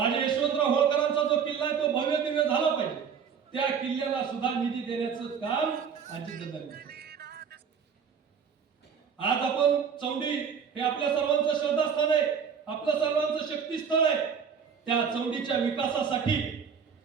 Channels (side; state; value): left; quieter; 6.8 dB